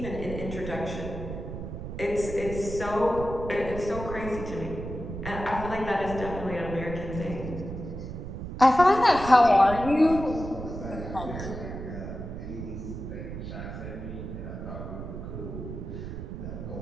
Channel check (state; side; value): noise; right; rumble, 8 dB below the sound